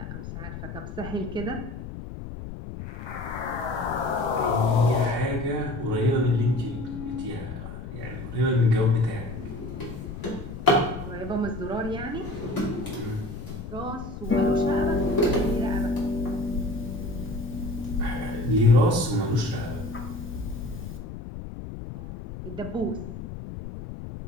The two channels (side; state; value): left; noise; rumble, 9 dB below the sound